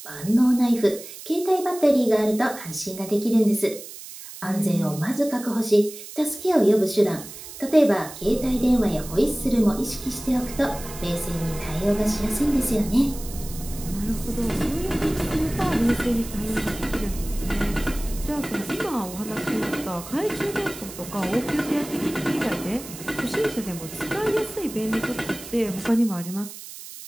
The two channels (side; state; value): right; noise; hiss, 13 dB below the sound